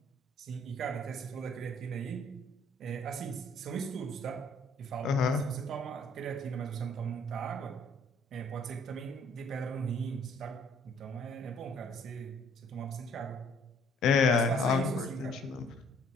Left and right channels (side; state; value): both; normal; correlation 0.61